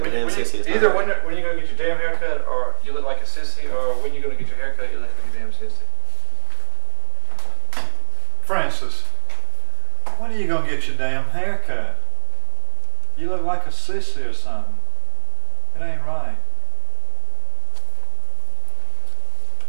a damn sissy. It's not Either right. when you gonna get your damn haircut, or you look like a sissy, or when you gonna get your haircut, you look like a damn sissy. Francis, when are you gonna get your damn haircut? You look like a sissy or something. It ain't right.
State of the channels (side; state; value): left; silent; digital silence